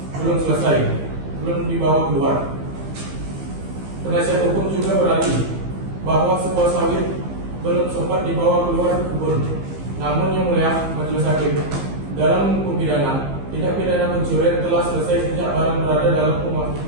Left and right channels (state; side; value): late; left; 15 ms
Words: belum selesai, belum dibawa keluar. Penasihat hukum juga beralih bahwa sebuah sawit belum sempat dibawa keluar kebun. Namun yang mulia majelis hakim, dalam hukum pidana, tindak pidana pencurian telah selesai sejak barang berada dalam